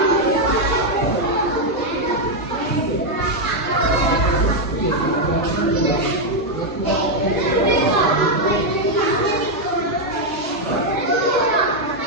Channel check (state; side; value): normal; both; correlation 0.01